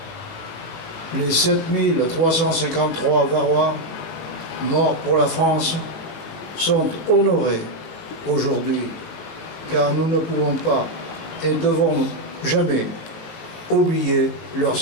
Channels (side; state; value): right; late; 18 ms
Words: les 7353 Varois morts pour la France sont honorés aujourd'hui, car nous ne pouvons pas et ne devons jamais oublier leur